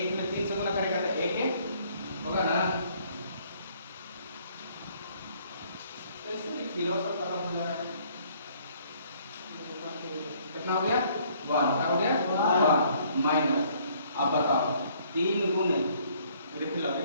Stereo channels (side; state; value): both; inverted; correlation -0.62